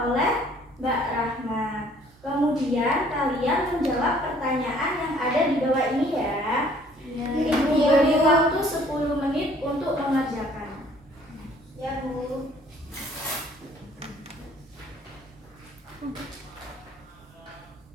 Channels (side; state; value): both; normal; correlation 0.58